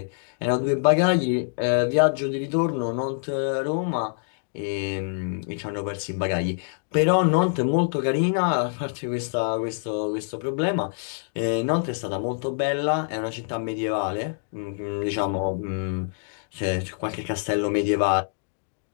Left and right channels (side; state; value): right; silent; digital silence